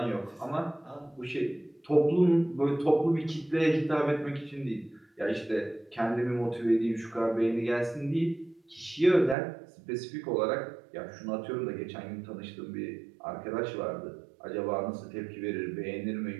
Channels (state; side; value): drops out; left; at 9.3 s